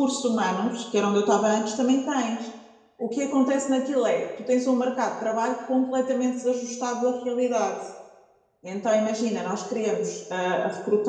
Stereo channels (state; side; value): identical; both; correlation 1.00